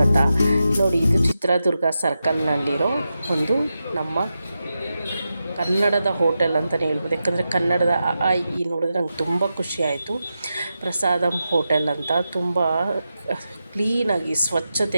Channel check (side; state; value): both; inverted; correlation -0.90